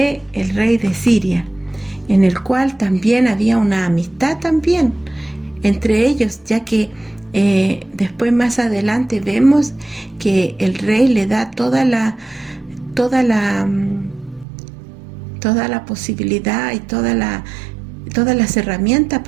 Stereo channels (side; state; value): left; drops out; at 14.5 s